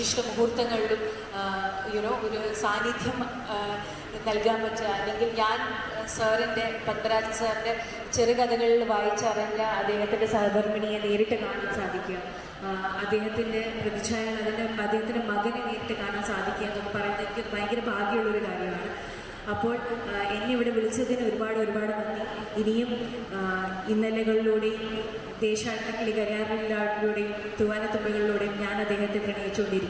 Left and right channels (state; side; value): identical; both; correlation 1.00